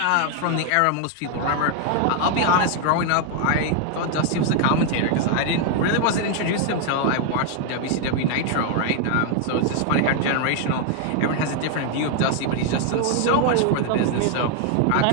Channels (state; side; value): different; both; correlation 0.00